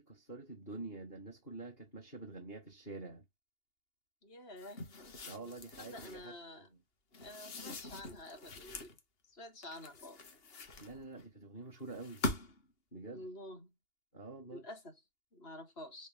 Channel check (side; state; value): right; late; 2.8 ms